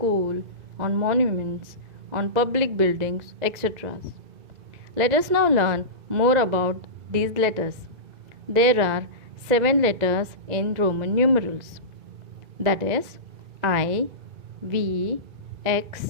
on monuments, on public buildings, etc. Let us now learn more about these letters. There are 7 letters in Roman numerals. That is I, V,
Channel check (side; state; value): left; late; 2.0 ms